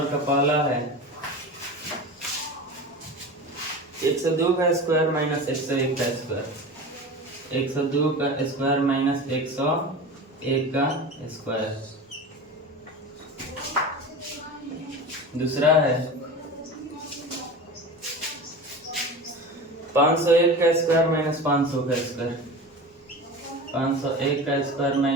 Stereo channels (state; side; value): normal; both; correlation 0.31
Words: का पहला है 102 का स्क्वायर माइनस 101 का स्क्वायर। 102 का स्क्वायर माइनस 101 का स्क्वायर। दूसरा है 501 का स्क्वायर माइनस 500 का स्क्वायर। 501 का स्क्वायर